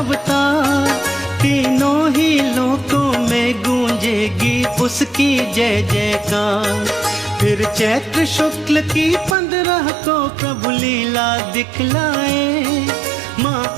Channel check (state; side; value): drops out; left; at 9.3 s